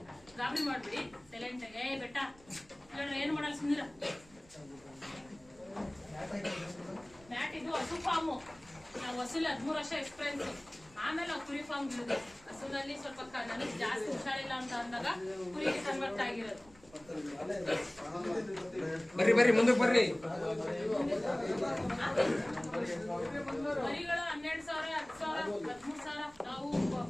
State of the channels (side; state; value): right; noise; rumble, 26 dB below the sound